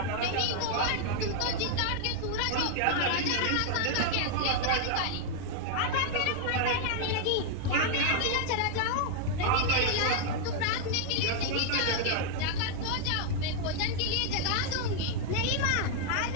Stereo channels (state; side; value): different; both; correlation 0.00